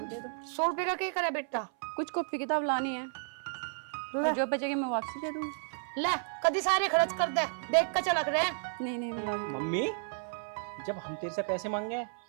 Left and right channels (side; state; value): left; silent; 56 dB below the other